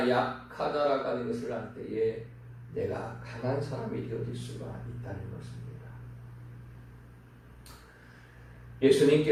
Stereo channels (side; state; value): both; identical; correlation 1.00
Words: 약하다라고 하는 것을 알 때에 내가 강한 사람이 되어질 수가 있다는 것입니다.